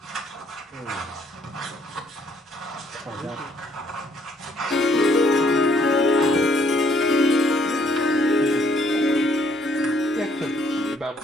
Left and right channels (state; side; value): normal; both; correlation 0.66